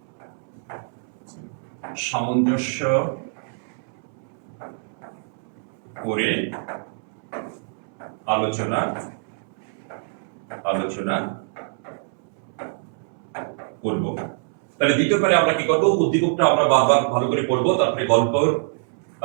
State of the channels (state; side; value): silent; left; 62 dB below the other